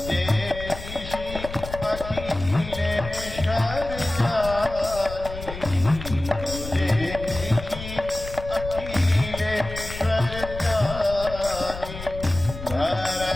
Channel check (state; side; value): noise; left; rumble, 10 dB below the sound